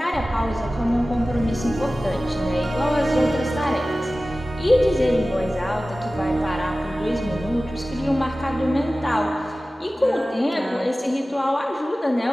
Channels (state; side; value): normal; both; correlation 0.96